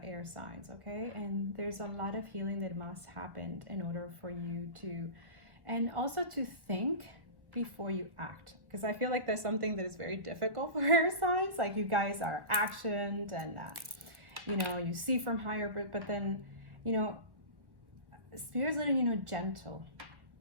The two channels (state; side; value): late; left; 1.3 ms